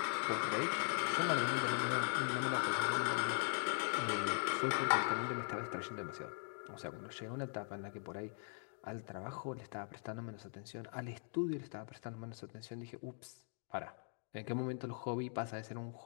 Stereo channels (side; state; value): right; silent; 51 dB below the other